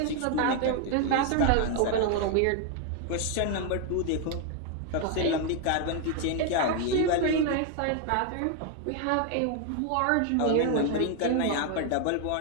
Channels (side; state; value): both; different; correlation 0.01